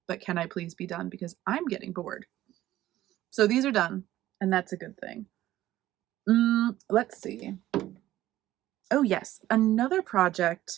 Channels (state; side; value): quieter; left; 14.6 dB